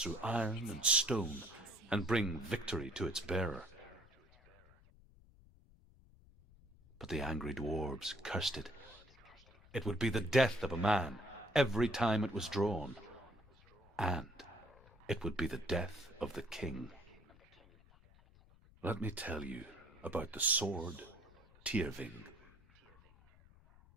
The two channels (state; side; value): noise; left; rumble, 25 dB below the sound